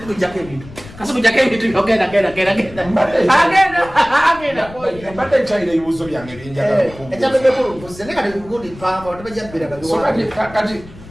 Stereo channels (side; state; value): left; noise; rumble, 18 dB below the sound